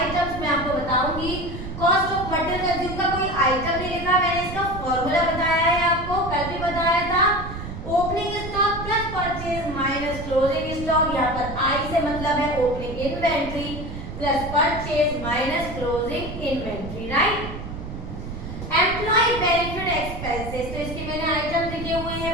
मैं आपको बताऊंगी। कॉस्ट ऑफ मटेरियल कंज्यूम का कोई आइटम नहीं लिखा, मैंने इसका फॉर्मूला बताया है आपको, कल भी बताया था। Opening stock plus purchase minus closing stock, यहाँ पर आई से मतलब है opening inventory plus purchase minus closing inventory, right. Employee benefit expenses, तो इसके मैंने आइटम लिखे हुए हैं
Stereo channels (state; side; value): noise; right; rumble, 8 dB below the sound